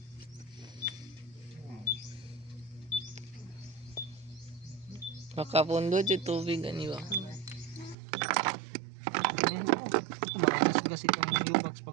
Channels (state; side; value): drops out; left; at 8.0 s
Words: Makapundot yung tubig, ani ba? Magasgas itong U-box